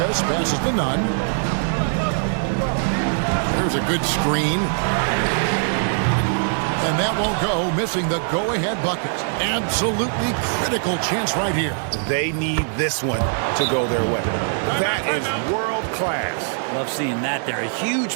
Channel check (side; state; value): left; silent; digital silence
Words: passes to Nunn. There's a good screen. And that won't go, missing the go-ahead bucket. Absolutely critical chance right here. They need this one to go their way. That is world class. Love seeing that there. A huge